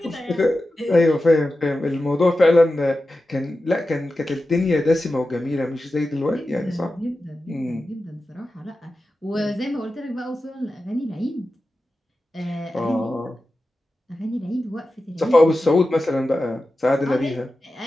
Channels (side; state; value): both; normal; correlation 0.92